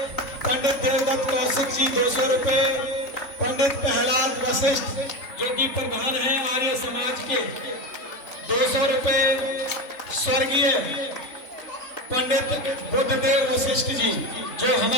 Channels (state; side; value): late; right; 3.6 ms